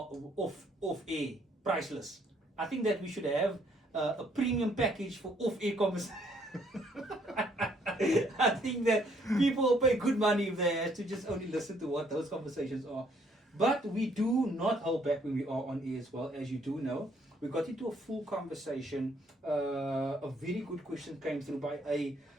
air, priceless. I think that we should have a premium package for off air conversations. I think that people will pay good money if they have to just only listen to what those conversations are. But we do not hold back when we are on air as well, as you do know. We got into a full conversation. A very good question came through by a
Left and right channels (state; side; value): normal; both; correlation 0.66